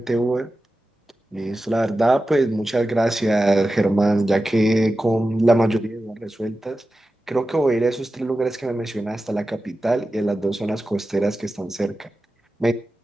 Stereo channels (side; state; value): both; normal; correlation 0.93